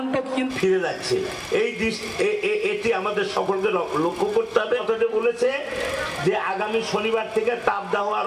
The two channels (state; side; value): identical; both; correlation 1.00